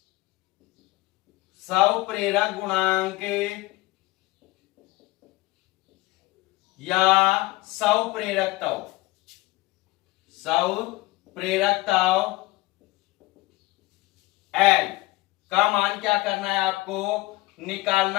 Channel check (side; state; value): right; quieter; 20.3 dB